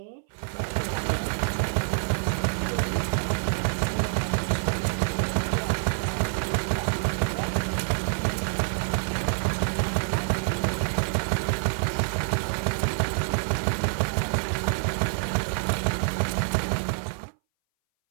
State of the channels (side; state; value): left; silent; 59 dB below the other